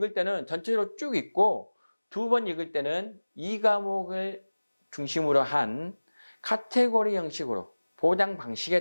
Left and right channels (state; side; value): inverted; both; correlation -1.00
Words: 때는 전체적으로 쭉 읽고 두 번 읽을 때는 이 과목을 중심으로 한 카테고리 형식으로 보장